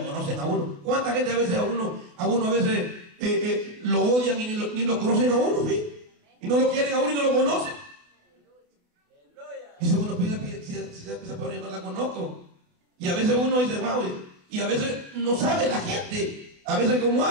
a uno. ¿Cuánta gente a veces a uno a veces lo odian y ni lo conocen a uno? ¿Sí? Y no lo quieren a uno y no lo conocen. Y si uno pide, si esa persona yo no la conozco. Y a veces uno dice, wow, y a veces no sabe la gente, a veces cómo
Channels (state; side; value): late; left; 28 ms